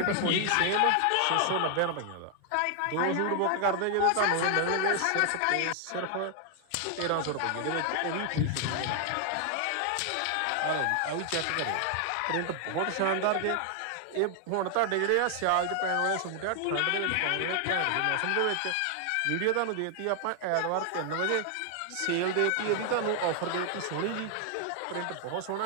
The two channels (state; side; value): different; both; correlation 0.00